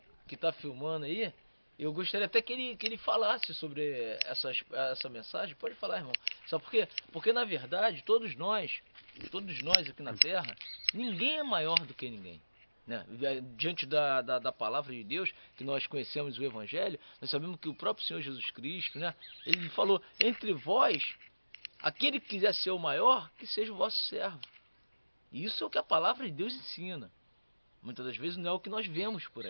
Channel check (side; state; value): both; inverted; correlation -1.00